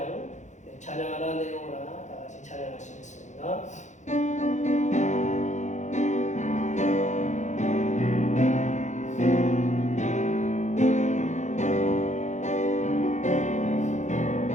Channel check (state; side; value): late; right; 0.35 ms